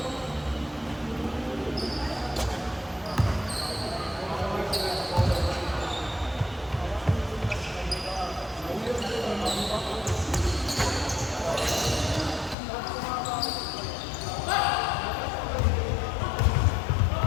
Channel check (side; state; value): right; drops out; at 12.6 s